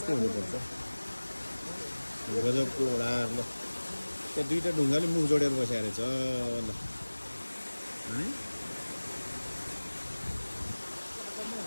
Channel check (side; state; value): both; inverted; correlation -1.00